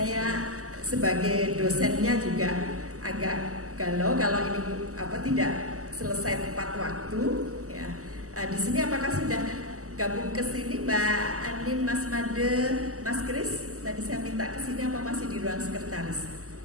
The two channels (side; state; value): left; late; 0.66 ms